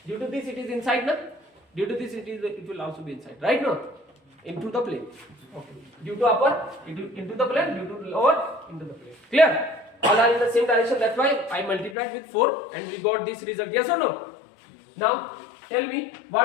Due to this, it is inside, na? Due to this, it will also be inside. Right now, into the plane. Okay. Due to upper, into the plane. Due to lower, into the plane. Clear? All are in the same direction. That's why I multiplied with 4 and we got this result. Yes or no? Now, tell me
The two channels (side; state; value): right; drops out; at 12.0 s